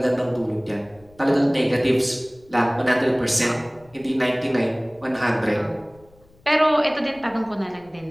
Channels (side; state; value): left; noise; rumble, 28 dB below the sound